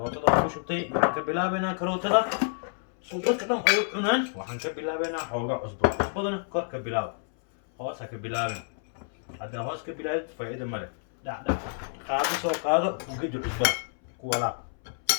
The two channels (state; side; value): silent; right; 59 dB below the other